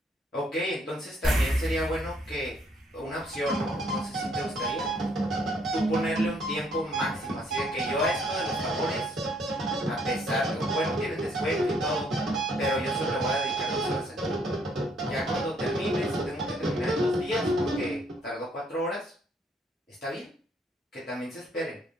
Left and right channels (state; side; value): normal; both; correlation 0.66